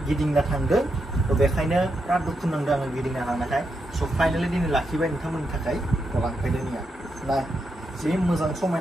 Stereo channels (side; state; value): both; normal; correlation 0.83